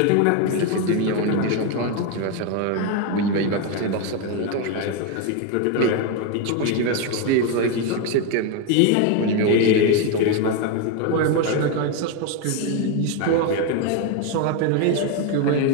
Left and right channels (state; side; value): different; both; correlation 0.02